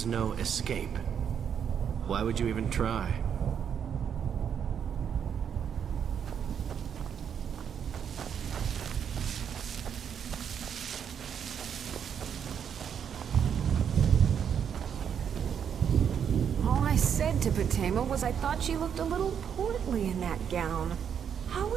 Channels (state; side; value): quieter; left; 8.0 dB